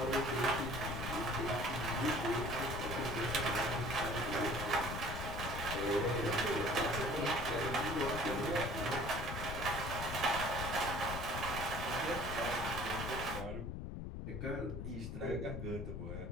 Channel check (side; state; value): left; noise; rumble, 5 dB below the sound